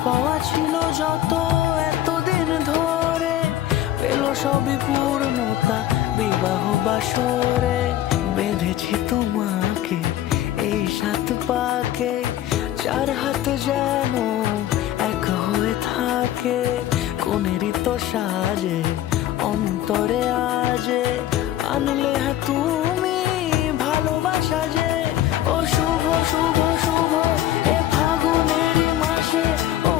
পাওয়া ছিল যত এতদিন ধরে, পেল সবই পূর্ণতা বিবাহ বাসরে। বেঁধেছি তোমাকে এই 7 পাকে, 4 হাত যেন এক হয়ে থাকে। কোনেরই তো সাজে অন্তরে আজে, আনলে হ্যাঁ তুমি ভালোবাসা যে। ও শুভ শুভ শুভ এ ফাগুনের মাসে, ও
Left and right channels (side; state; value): right; quieter; 12.8 dB